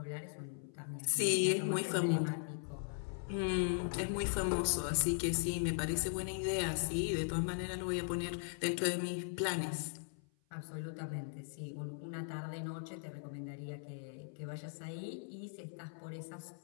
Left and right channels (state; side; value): silent; right; 52 dB below the other